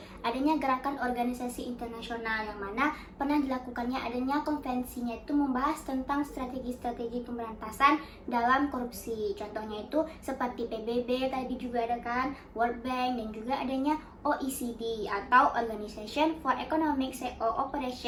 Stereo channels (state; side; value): identical; both; correlation 1.00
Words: adanya gerakan organisasi internasional yang mana pernah dilakukannya adanya konvensinya itu membahas tentang strategi-strategi pemberantasan dalam korupsi. Contohnya itu seperti PBB tadi juga ada kan, World Bank dan juga adanya OECD atau Organization for Economic